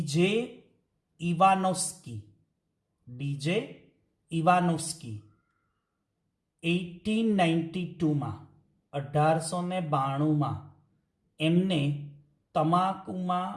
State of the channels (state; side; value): identical; both; correlation 1.00